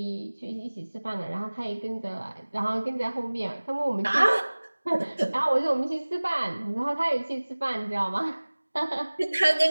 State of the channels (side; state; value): both; inverted; correlation -1.00